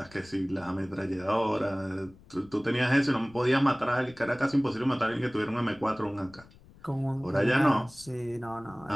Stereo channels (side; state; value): left; noise; rumble, 24 dB below the sound